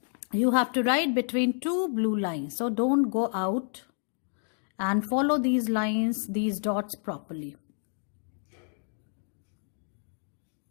You have to write between two blue lines. So don't go out and follow these lines, these dots properly.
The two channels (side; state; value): right; silent; 58 dB below the other